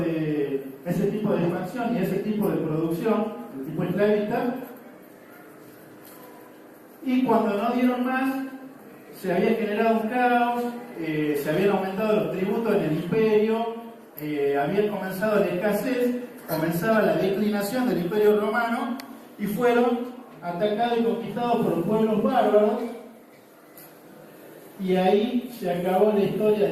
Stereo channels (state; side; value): identical; both; correlation 1.00